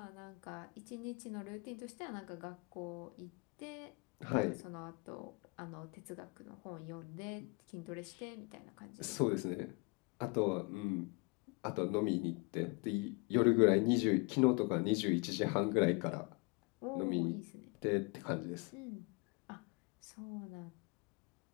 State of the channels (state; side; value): quieter; right; 29.9 dB